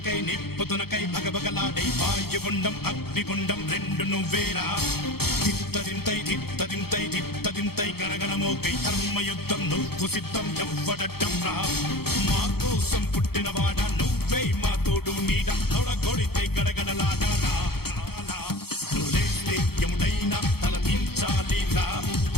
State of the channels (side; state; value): right; late; 0.95 ms